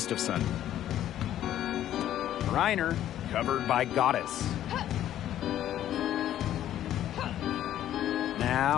Reiner covered by Goddess.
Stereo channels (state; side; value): quieter; right; 11.9 dB